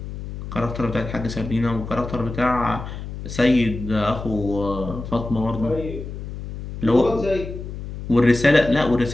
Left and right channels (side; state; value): left; noise; hum, 9 dB below the sound